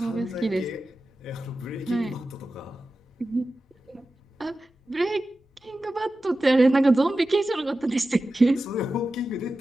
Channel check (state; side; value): normal; both; correlation 0.93